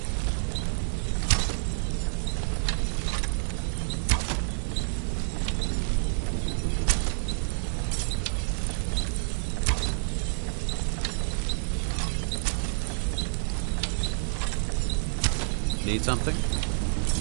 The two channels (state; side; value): silent; left; digital silence